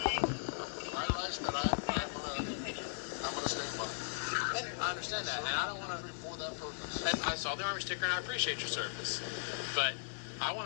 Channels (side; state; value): right; silent; 53 dB below the other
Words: I understand that, and I don't want to. And I saw the Army sticker, and I appreciate your service, but I